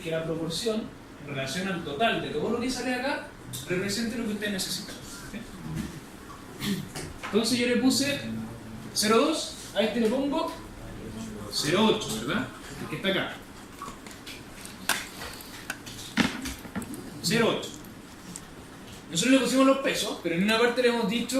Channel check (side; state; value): both; identical; correlation 1.00